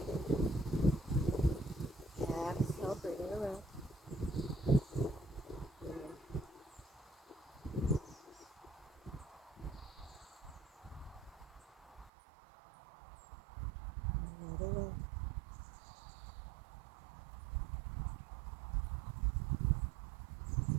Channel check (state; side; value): drops out; left; at 12.1 s